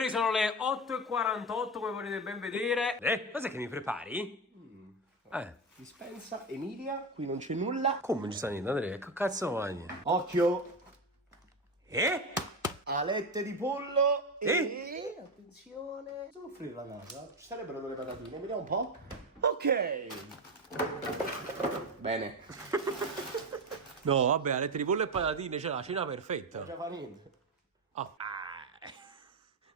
sono le 8:48 come potete ben vedere. Cos'è che mi prepari? Dispensa, Emilia, qui non c'è nulla. Come non ci sta niente, Andrea? Che cazzo mangi? Occhio, alette di pollo E? attenzione, devo offrire la casa. Ci sarebbero delle patatine, vediamo un po'. Ok. Bene. No, vabbè, alette di pollo e patatine, c'è la cena perfetta. Non fa niente. Ah.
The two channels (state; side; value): normal; both; correlation 0.17